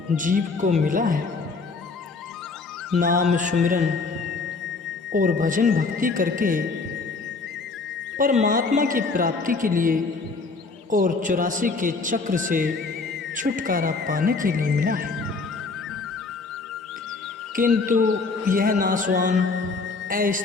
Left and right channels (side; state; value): right; quieter; 4.1 dB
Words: जीव को मिला है, नाम सुमिरन और भजन भक्ति करके परमात्मा की प्राप्ति के लिए और 84 के चक्र से छुटकारा पाने के लिए मिला है। किंतु यह नाशवान,